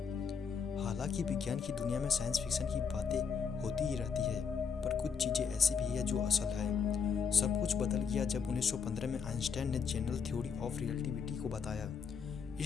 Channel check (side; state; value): right; quieter; 6.1 dB